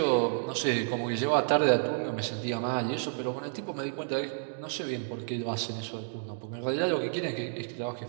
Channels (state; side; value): silent; left; digital silence